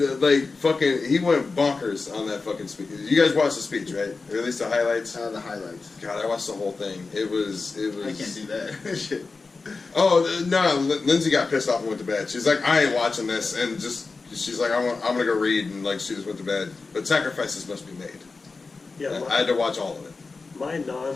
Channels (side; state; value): right; quieter; 4.1 dB